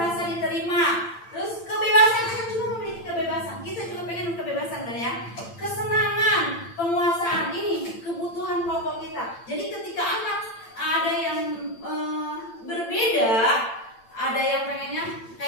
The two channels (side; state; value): right; late; 8.8 ms